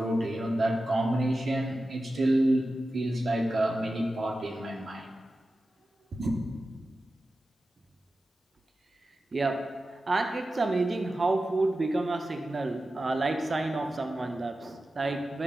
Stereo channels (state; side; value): normal; both; correlation 0.93